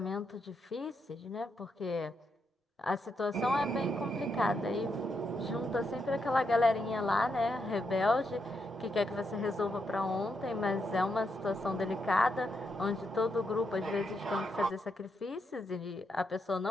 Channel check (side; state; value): both; normal; correlation 0.81